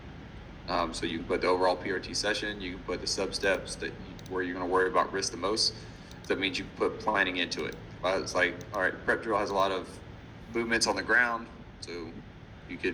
So you can put the overall PRT session. You can put the substeps where you're going to worry about risk the most. So that means you can put planning into it. But it's like, all right, prep drill has a lot of movements on the ground. So you could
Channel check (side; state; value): both; identical; correlation 1.00